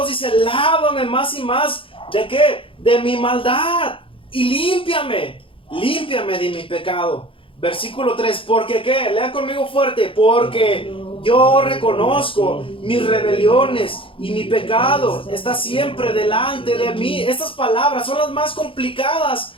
dice, lávame más y más, ¿de qué? De mi maldad, y límpiame de mi pecado. Versículo 3, ¿porque qué? Lean conmigo fuerte, porque yo reconozco mis rebeliones y mi pecado está siempre delante de mí. Estas palabras son las más complicadas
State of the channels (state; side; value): late; right; 0.26 ms